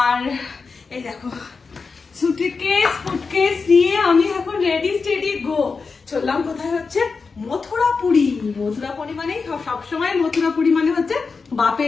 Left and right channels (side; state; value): right; quieter; 4.7 dB